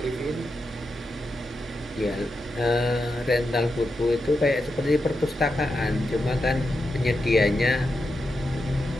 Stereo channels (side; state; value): both; normal; correlation 0.87